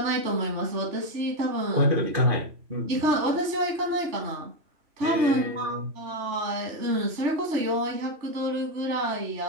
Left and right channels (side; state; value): left; late; 3.4 ms